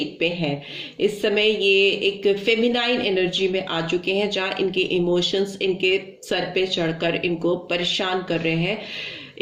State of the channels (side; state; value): both; identical; correlation 1.00